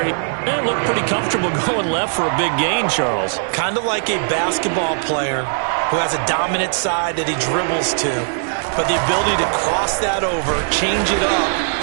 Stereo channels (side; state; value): left; silent; digital silence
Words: he looked pretty comfortable going left for a big gain, Charles. Kind of like a basketball player who has a dominant side that he dribbles to, but the ability to cross that over, change it up,